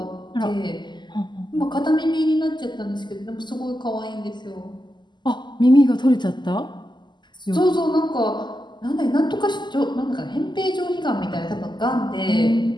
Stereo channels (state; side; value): late; right; 0.21 ms